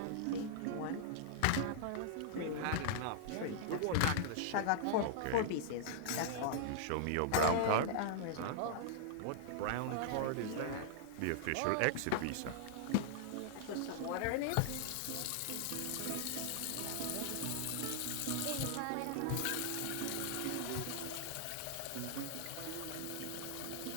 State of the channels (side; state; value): both; different; correlation -0.01